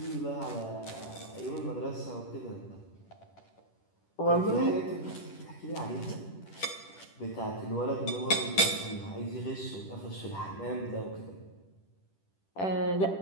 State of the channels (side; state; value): right; late; 10 ms